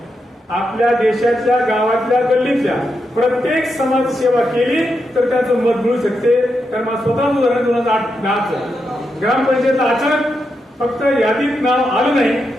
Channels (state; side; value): normal; both; correlation 0.85